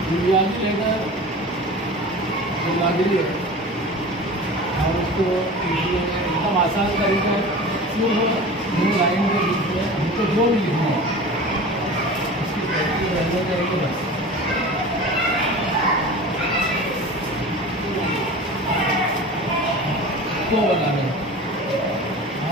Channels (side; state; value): both; normal; correlation 0.35